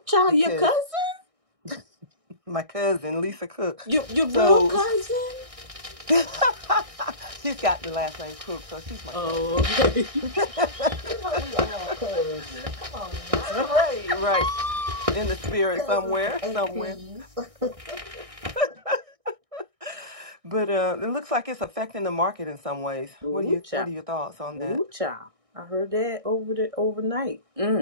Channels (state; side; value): late; left; 1.6 ms